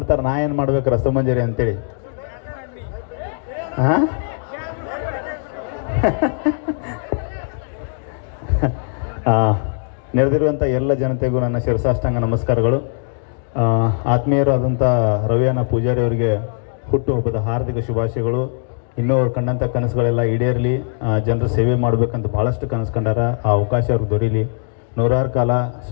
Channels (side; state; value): right; silent; digital silence